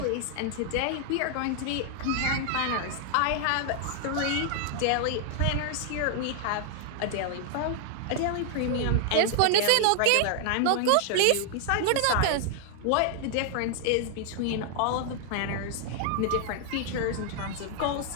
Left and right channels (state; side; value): different; both; correlation 0.00